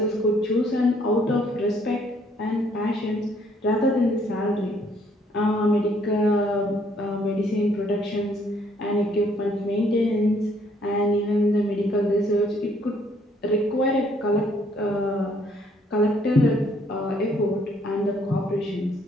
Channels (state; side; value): normal; both; correlation 0.66